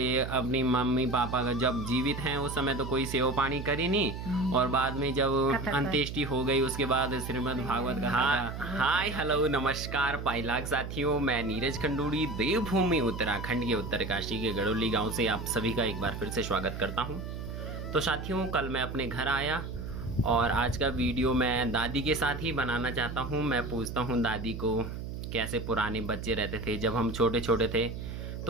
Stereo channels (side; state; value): right; noise; hum, 7 dB below the sound